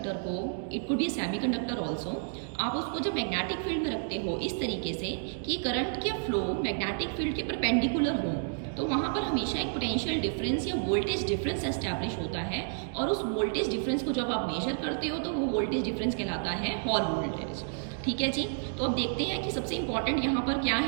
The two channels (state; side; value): silent; left; digital silence